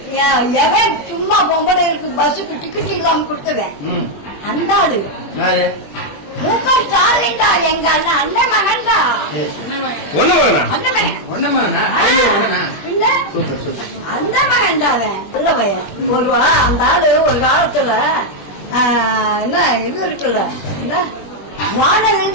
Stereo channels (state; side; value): late; right; 21 ms